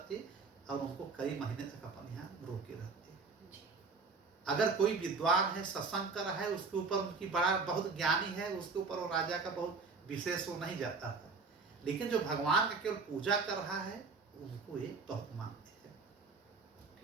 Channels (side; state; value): left; quieter; 4.4 dB